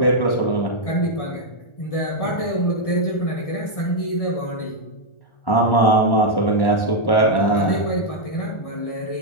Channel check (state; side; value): late; right; 1.4 ms